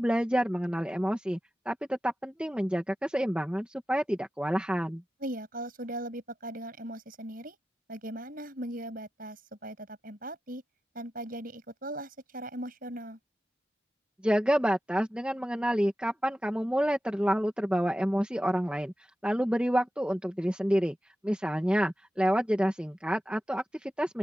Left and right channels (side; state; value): both; normal; correlation 0.93